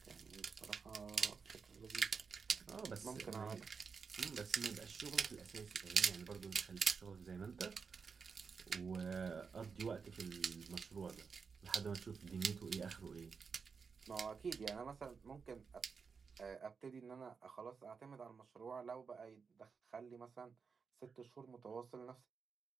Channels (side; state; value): left; quieter; 5.5 dB